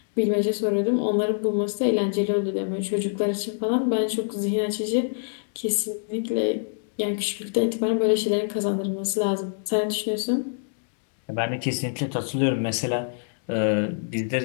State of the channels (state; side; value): silent; right; digital silence